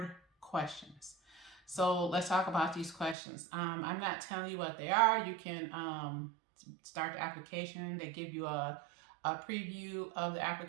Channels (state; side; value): drops out; left; at 3.2 s